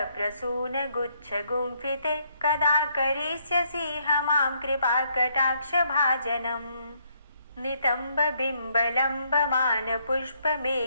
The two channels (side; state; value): both; inverted; correlation -0.71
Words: कदा करिष्यसि मां कृपाकटाक्षभाजनम्